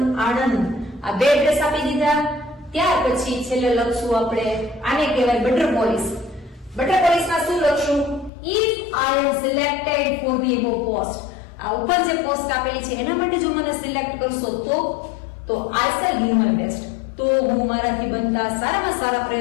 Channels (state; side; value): drops out; right; at 8.3 s